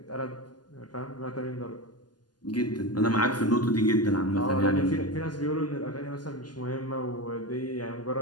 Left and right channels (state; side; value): late; right; 0.70 ms